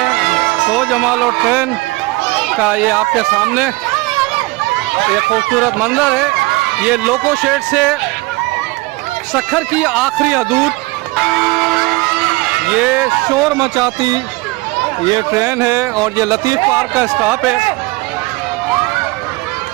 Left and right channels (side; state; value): left; quieter; 22.8 dB